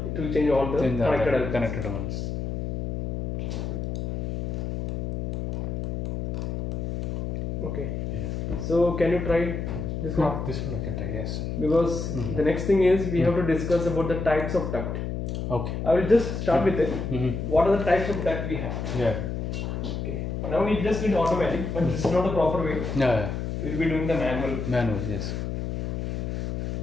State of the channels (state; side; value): noise; left; hum, 3 dB below the sound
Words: it will change all the connected ones. Okay. Yeah. So can you try this one? This one I can try, yes. Because the next thing is we have to discuss about the types of duct. Okay. I will just start with it. What are the types of duct we have? Yeah. Okay. Now we just need automatic, but this is not the proper way. Yeah. We will be doing the manual. Manual, yes.